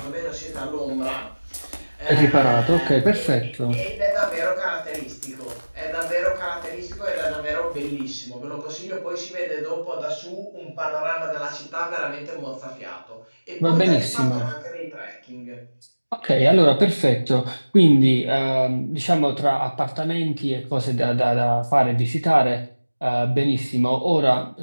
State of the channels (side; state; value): both; inverted; correlation -1.00